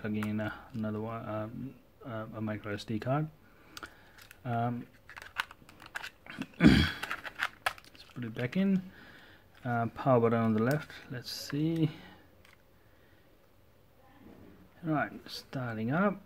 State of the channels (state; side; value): identical; both; correlation 1.00